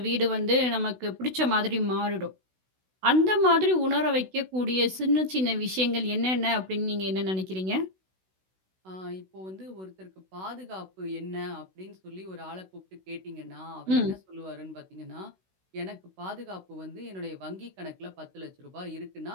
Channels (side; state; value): left; late; 16 ms